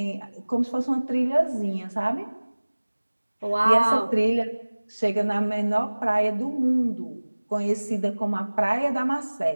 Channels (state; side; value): inverted; both; correlation -1.00